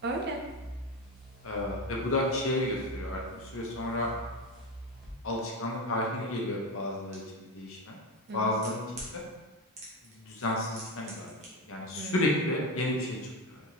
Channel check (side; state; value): both; normal; correlation 0.18